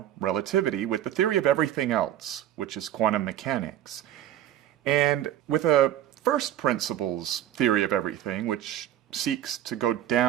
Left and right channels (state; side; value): quieter; left; 11.7 dB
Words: relativity, with the theory of everything else, which is quantum mechanics. And with a first principles theory of everything, which seeks to go